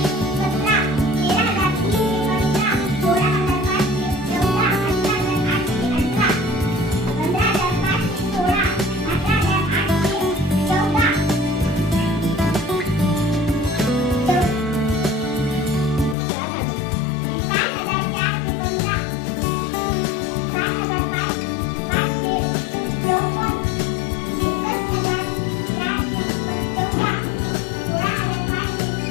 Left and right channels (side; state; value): right; drops out; at 16.2 s